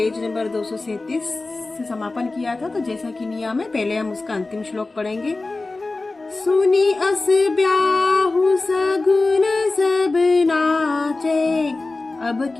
नंबर 237 से समापन किया था। तो जैसा कि नियम है, पहले हम उसका अंतिम श्लोक पढ़ेंगे। सुनी अस ब्याहु सगुन सब नाचे, अब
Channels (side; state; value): right; quieter; 3.3 dB